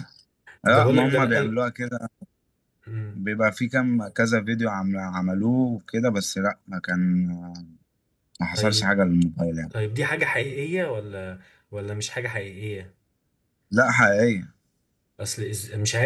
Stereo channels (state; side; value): identical; both; correlation 1.00